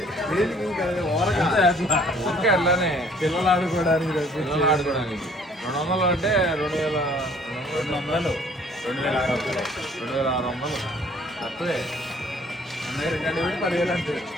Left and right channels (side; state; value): both; normal; correlation 0.57